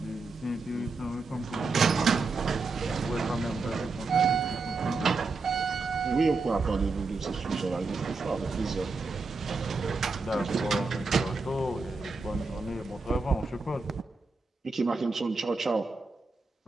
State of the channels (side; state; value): left; quieter; 4.0 dB